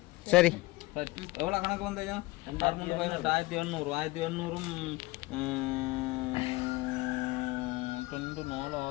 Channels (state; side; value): quieter; right; 21.3 dB